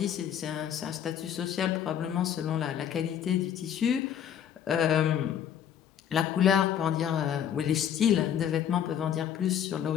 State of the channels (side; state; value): right; quieter; 9.4 dB